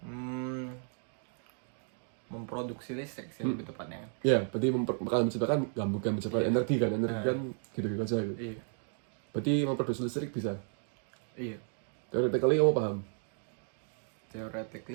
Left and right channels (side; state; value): left; silent; 55 dB below the other